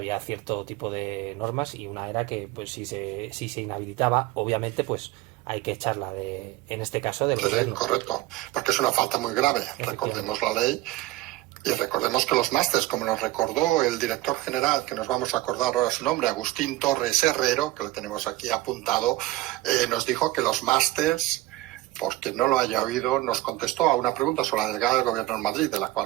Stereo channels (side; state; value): left; quieter; 17.5 dB